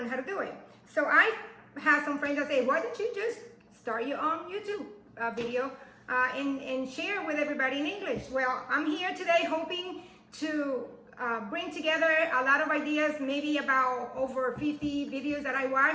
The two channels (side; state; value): both; identical; correlation 1.00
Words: how to do it. So I have some friends that say, why don't you just start your own YouTube video and share with everybody in English? Well, I'm here today hoping to bring together a lot of ideas, maybe about over 50 videos that I